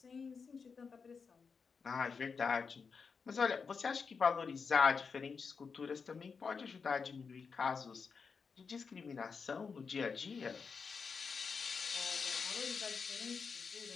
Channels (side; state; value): right; quieter; 5.4 dB